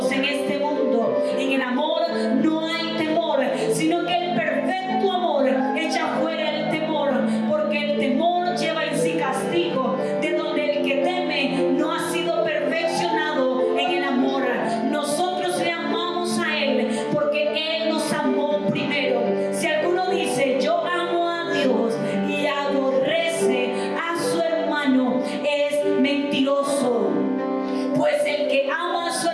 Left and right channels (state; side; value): identical; both; correlation 1.00